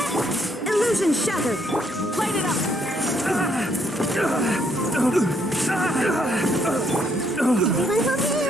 Illusion shattered! Light it up!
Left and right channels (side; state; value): both; normal; correlation 0.71